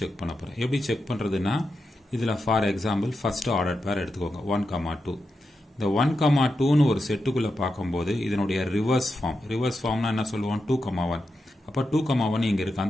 செக் பண்ண போறேன். எப்படி செக் பண்றதுன்னா இதுல ஃபார் எக்ஸாம்பிள் ஃபர்ஸ்ட் ஆர்டர் பேர் எடுத்துக்கோங்க 1,2. இந்த 1,2ன்னு ஒரு செட்டுக்குள்ள பார்க்கும்போது இதனுடைய ரிவர்ஸ் ஃபார்ம்னா என்ன சொல்லுவோம் 2,1. அப்போ 2,1 இங்க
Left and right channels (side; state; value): both; normal; correlation 0.88